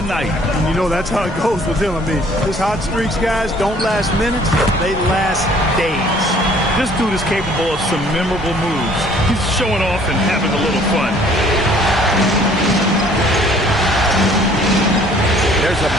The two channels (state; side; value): normal; both; correlation 0.57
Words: And you know, that's how it goes with him. I mean, his hot streaks, guys, don't last minutes. They last days. This dude is capable of some memorable moves. He's showing off and having a little fun. There's a